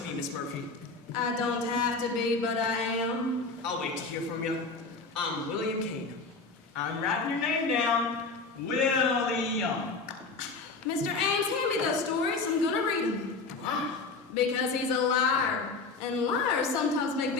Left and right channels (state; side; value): quieter; right; 4.0 dB